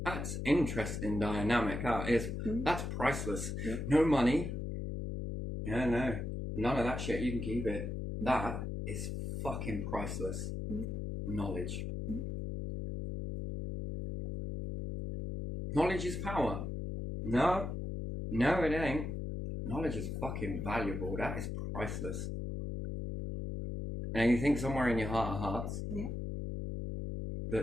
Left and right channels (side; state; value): left; noise; hum, 4 dB below the sound